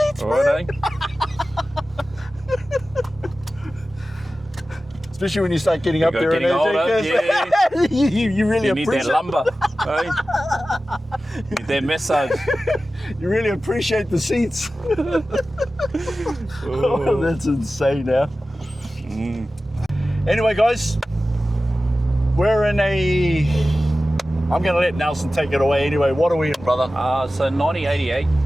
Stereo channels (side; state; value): both; normal; correlation 0.95